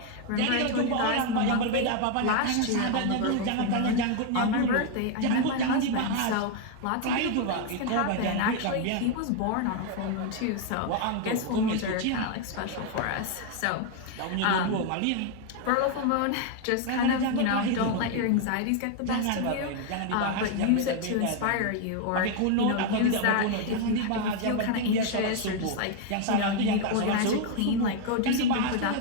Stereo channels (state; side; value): different; both; correlation 0.01